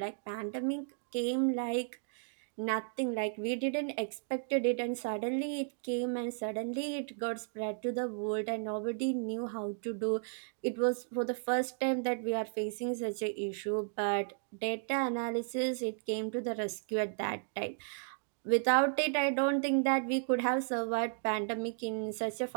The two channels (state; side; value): silent; left; digital silence